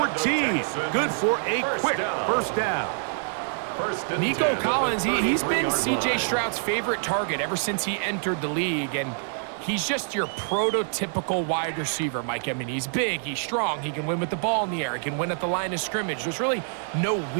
Good for a quick first down. Nico Collins, he's been C.J. Stroud's favorite target ever since he entered the league, and he's just your prototypical wide receiver, Mike. I mean, he's big, he's strong, he can win with the ball in the air, he can win at the line of scrimmage. There's really no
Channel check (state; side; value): silent; left; digital silence